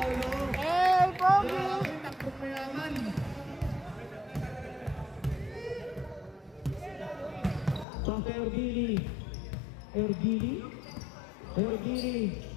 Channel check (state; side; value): drops out; right; at 7.9 s